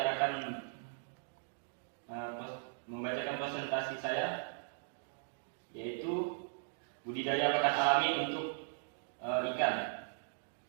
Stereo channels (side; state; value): left; silent; digital silence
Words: akan membacakan presentasi saya, yaitu budidaya pakan alami untuk ikan.